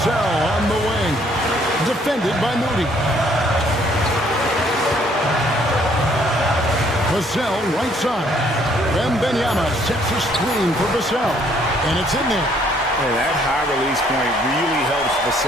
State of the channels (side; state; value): both; normal; correlation 0.64